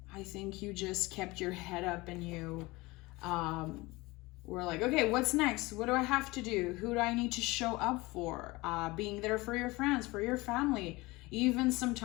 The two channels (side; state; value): right; quieter; 22.1 dB